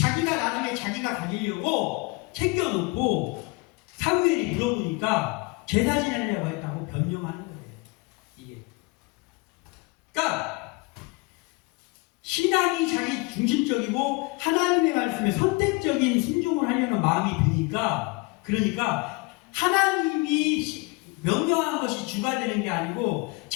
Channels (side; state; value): right; quieter; 26.7 dB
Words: 나중에 자기가 가지려고 챙겨놓고 사무엘이 물어보니까 제사 지내려고 했다고 변명하는 거예요. 이게. 그러니까 신앙이 자기 중심적이고 하나님의 말씀에 선택적인 순종을 하려는 마음이 드니까 그러니까 하나님이 명령한 것이 주가 되는 게 아니고